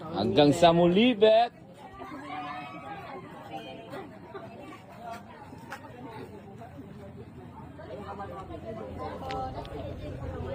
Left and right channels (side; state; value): both; identical; correlation 1.00